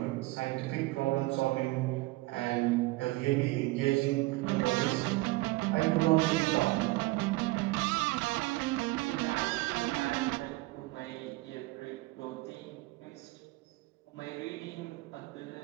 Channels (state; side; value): quieter; left; 21.2 dB